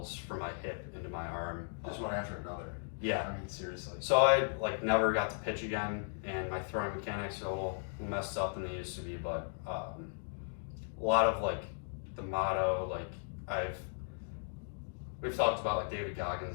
from my hip into my arm. Just one after another. Yeah. I mean, seriously. So I like never got to pitch again, and my throwing mechanics are a little messed up than they used to be, but a lot of like the motto, like we've talked about like David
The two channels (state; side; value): silent; right; digital silence